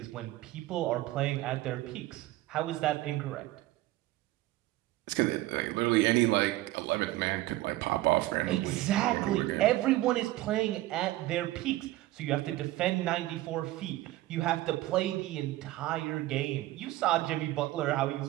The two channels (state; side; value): quieter; left; 17.0 dB